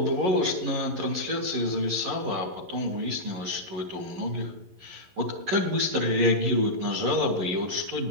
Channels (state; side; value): late; left; 11 ms